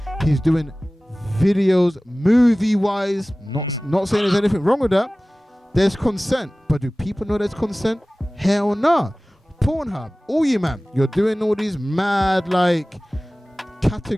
he's doing videos movie-wise, not saying there's anything wrong with that. There's consent, but do people know there's consent? Hell no. Pornhub, all you man, you're doing all these mad like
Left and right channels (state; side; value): normal; both; correlation 0.98